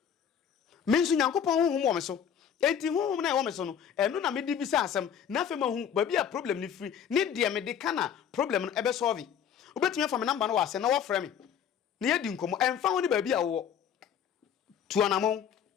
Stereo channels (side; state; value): right; quieter; 8.4 dB